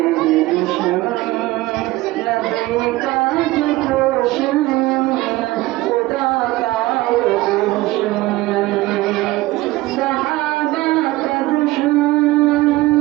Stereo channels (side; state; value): left; quieter; 18.9 dB